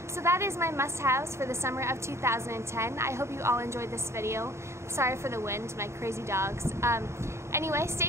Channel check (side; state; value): left; late; 0.13 ms